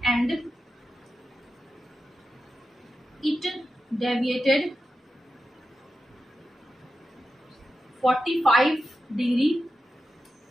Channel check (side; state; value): both; normal; correlation 0.91